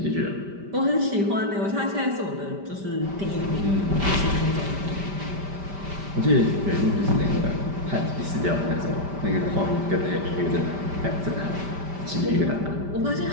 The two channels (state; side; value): late; left; 5.1 ms